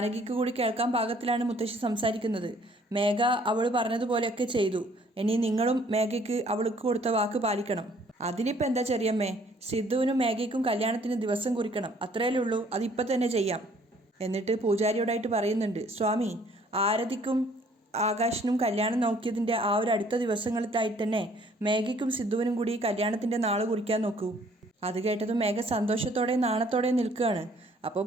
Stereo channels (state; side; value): normal; both; correlation 0.60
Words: കൂടി കേൾക്കാൻ പാകത്തിലാണ് മുത്തശ്ശി സംസാരിക്കുന്നത്. മേഘ അവൾ പറഞ്ഞതുപോലെയൊക്കെ ചെയ്തു, ഇനി നിങ്ങളും മേഘയ്ക്ക് അവൾക്ക് കൊടുത്ത വാക്ക് പാലിക്കണം. അതിനിപ്പോൾ എന്താ ചെറിയമ്മേ, സിദ്ധുവിനും മേഘയ്ക്കും കല്യാണത്തിന് ദിവസം കുറിക്കണം, അത്രയല്ലേ ഉള്ളൂ, അതിപ്പോൾ തന്നെ ചെയ്യാം. എന്നിട്ട് പൂജാരിയോടായിട്ട് പറയുന്നുണ്ട് സ്വാമി ആരതിക്കും ആകാശിനും കല്യാണം നോക്കിയതിൻ്റെ ആ ഒരു അടുത്ത ദിവസങ്ങളിലായിട്ട് തന്നെ മേഘയ്ക്കും സിദ്ധുവിനും കൂടി കല്യാണത്തിൻ്റെ നാൾ കുറിക്കാൻ നോക്കൂ. അത് കേട്ടതും മേഘ സന്തോഷത്തോടെ നാണത്തോടെ നിൽക്കുകയാണ്. അപ്പോൾ